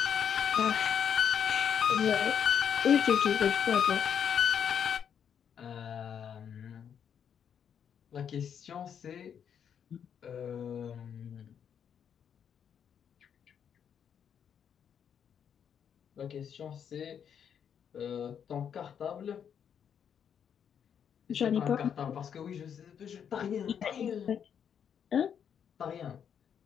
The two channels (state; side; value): quieter; right; 8.1 dB